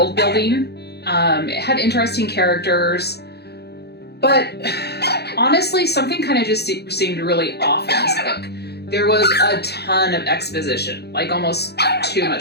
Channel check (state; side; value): late; right; 0.48 ms